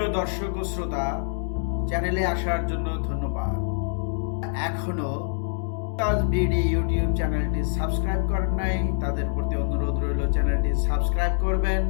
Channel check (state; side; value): silent; right; digital silence